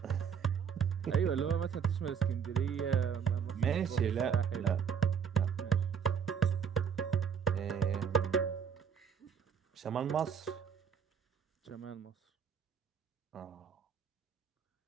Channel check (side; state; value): left; quieter; 7.2 dB